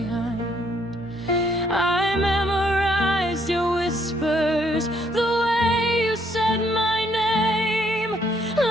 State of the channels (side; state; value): both; normal; correlation 0.69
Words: I memorized your whispers, the way you said my name,